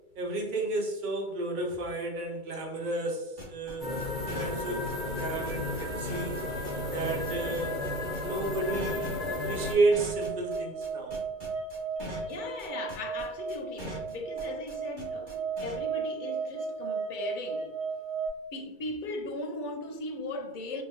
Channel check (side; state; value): left; late; 2.3 ms